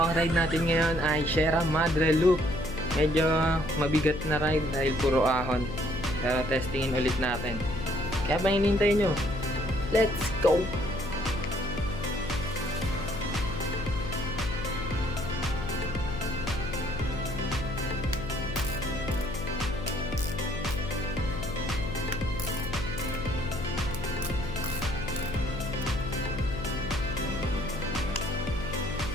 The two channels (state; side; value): noise; left; hum, 7 dB below the sound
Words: ride natin ngayon ay Sierra Madre Loop. Medyo mabigat na ride dahil puro ahon. Pero testingin ulit natin. Kaya pa hinintay nyo? Let's go!